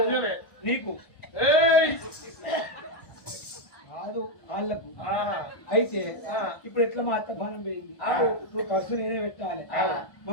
నీకు కాదు వాళ్ళకు. అయితే ఇప్పుడు ఎట్లా మా అత్త పానం పోయింది. ఇప్పుడు ఖర్చు నేనే పెట్టాలి. మా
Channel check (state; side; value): late; right; 1.1 ms